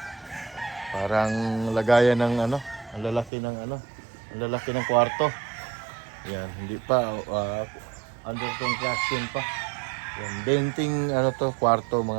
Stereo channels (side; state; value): left; drops out; at 3.3 s